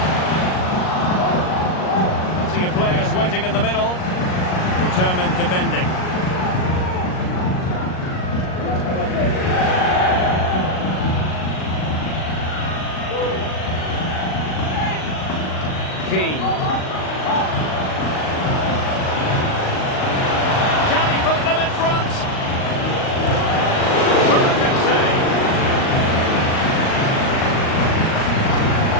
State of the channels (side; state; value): right; late; 38 ms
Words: Players waiting in the middle. Determined defending. Keane. Can he put them in front? Perfect save.